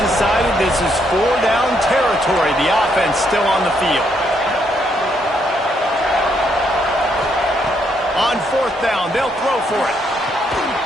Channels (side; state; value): both; normal; correlation 0.74